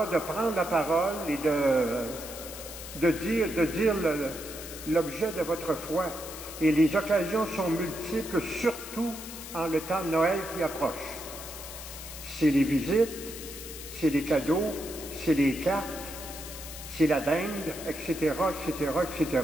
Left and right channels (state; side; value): noise; left; hiss, 11 dB below the sound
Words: de prendre la parole et de dire l'objet de votre foi. Et les occasions sont multiples, surtout en le temps de Noël qui approche. C'est les visites, c'est les cadeaux, c'est les cartes, c'est la dinde, etc., etc., etc.